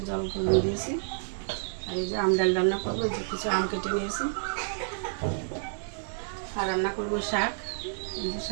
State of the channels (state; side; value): silent; left; digital silence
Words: জল গরম দিয়েছি। আর এই যে আম ডাল রান্না করবো, এই যে কিছু আম কেটে নিয়েছি। আর রান্না করবো শাক। এই যে